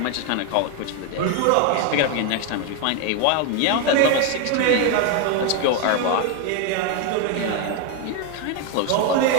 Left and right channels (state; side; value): different; both; correlation 0.01